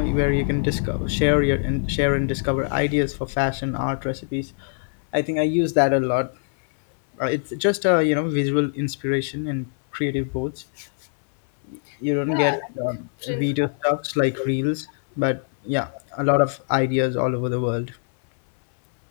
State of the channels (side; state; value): right; silent; 62 dB below the other